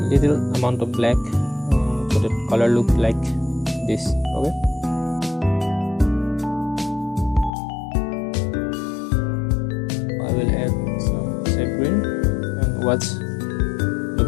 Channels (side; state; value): right; drops out; at 7.5 s